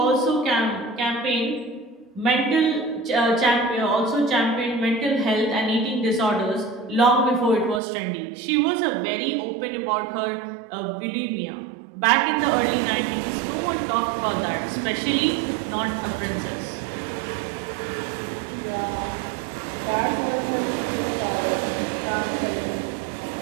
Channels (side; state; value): left; drops out; at 7.8 s